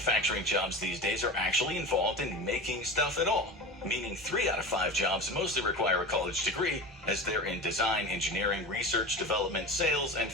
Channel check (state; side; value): normal; both; correlation 0.30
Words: jobs these days are actually involved in making stuff at all, meaning 3 out of 5 jobs mostly require a college degree, as they're in design, engineering, research, development, sales, and